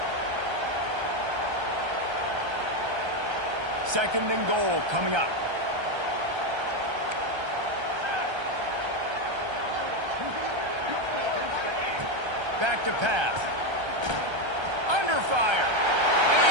Second and goal coming up. Back to pass. Under fire. And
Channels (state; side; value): late; left; 1.3 ms